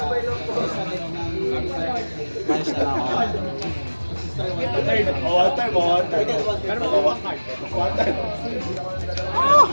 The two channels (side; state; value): both; inverted; correlation -1.00